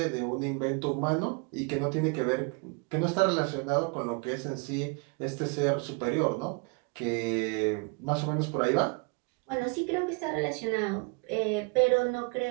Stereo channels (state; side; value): quieter; left; 33.4 dB